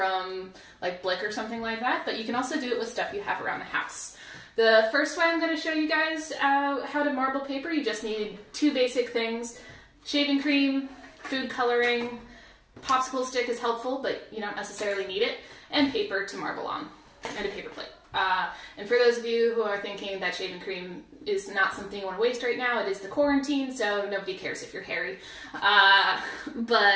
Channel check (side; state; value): both; identical; correlation 1.00